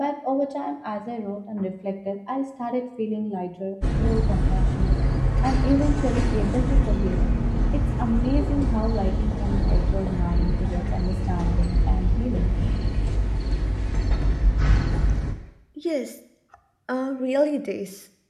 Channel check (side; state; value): both; identical; correlation 1.00